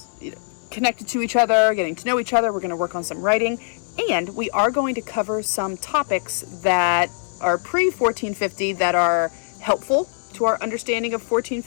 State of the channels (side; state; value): right; silent; 64 dB below the other